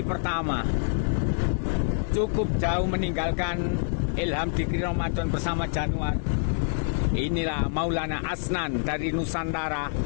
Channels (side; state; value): right; silent; 61 dB below the other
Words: pertama. Cukup jauh meninggalkan Ilham Dikri Ramadan bersama Januar. Inilah Maulana Asnan dari Nusantara.